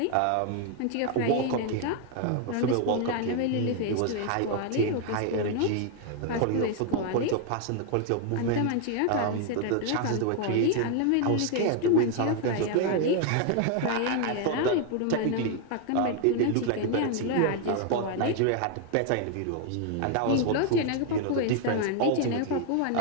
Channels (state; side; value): different; both; correlation 0.00